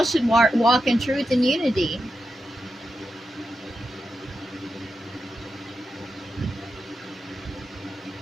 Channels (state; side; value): normal; both; correlation 0.88